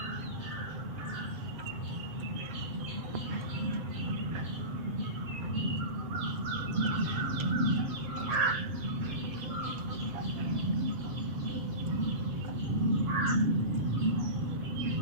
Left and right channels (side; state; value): left; late; 7.8 ms